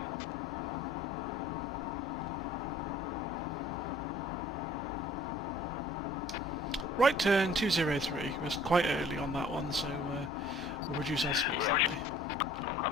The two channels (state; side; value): normal; both; correlation 0.53